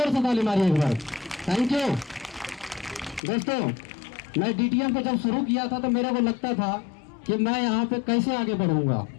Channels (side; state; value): right; drops out; at 3.2 s